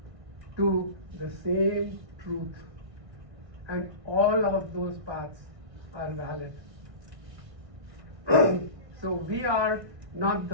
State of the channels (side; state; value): left; late; 1.6 ms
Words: to the same truth, and all of those paths are valid. So we are not